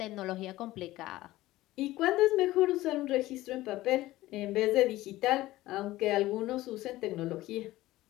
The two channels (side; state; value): right; quieter; 16.9 dB